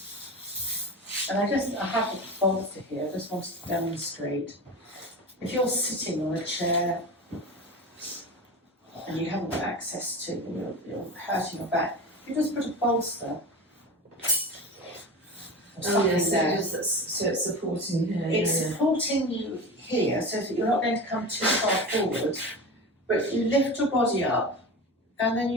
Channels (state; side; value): normal; both; correlation 0.29